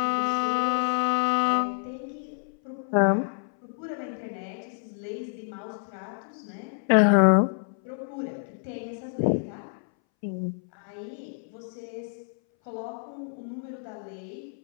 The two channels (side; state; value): right; silent; 59 dB below the other